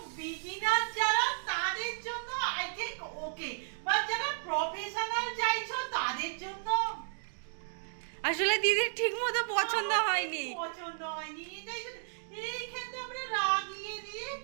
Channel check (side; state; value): left; silent; digital silence